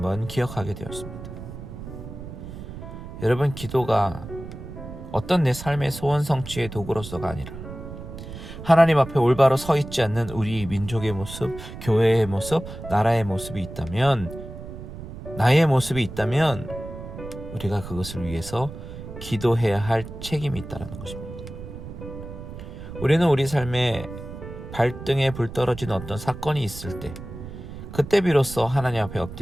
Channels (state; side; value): noise; right; rumble, 11 dB below the sound